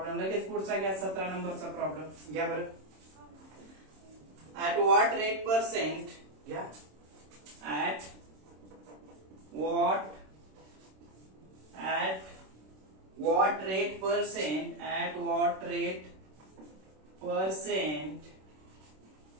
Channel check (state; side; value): late; left; 26 ms